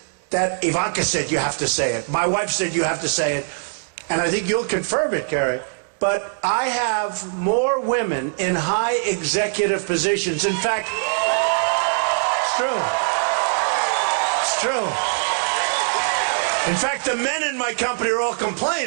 that Ivanka said you have to say it. My wife said you have to say it. And I think you'll confirm it, Carrie. But I have more women in high executive positions. In fact, it's true. It's true. In fact, the men in my company are all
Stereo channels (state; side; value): silent; left; 64 dB below the other